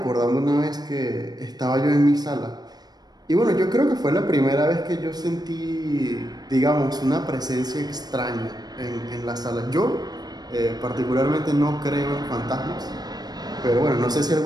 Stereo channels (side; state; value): left; late; 0.19 ms